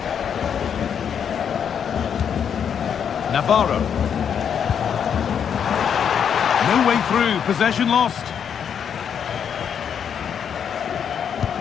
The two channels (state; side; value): quieter; right; 7.9 dB